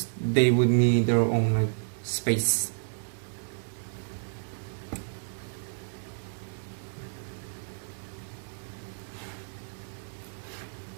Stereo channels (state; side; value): silent; left; digital silence